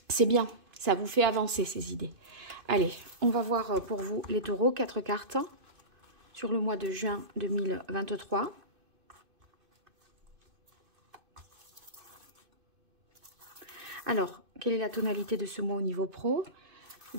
bien, ça vous fait avancer ces idées. Allez, on va voir pour vous les taureaux, 4 cartes sur le mois de juin 2023. Alors, quelle est la tonalité de ce mois au niveau pro?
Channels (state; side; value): late; left; 2.5 ms